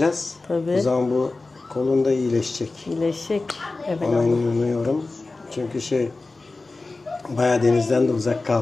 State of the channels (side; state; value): right; quieter; 3.4 dB